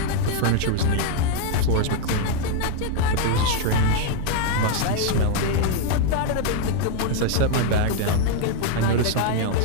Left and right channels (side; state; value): both; different; correlation 0.01